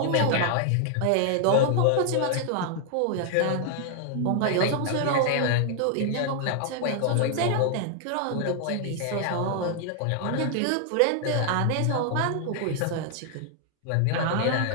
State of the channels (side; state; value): both; different; correlation 0.00